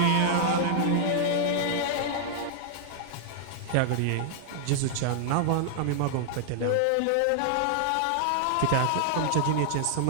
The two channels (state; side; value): different; both; correlation -0.01